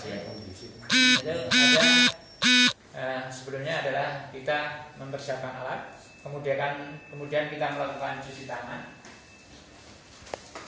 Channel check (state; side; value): identical; both; correlation 1.00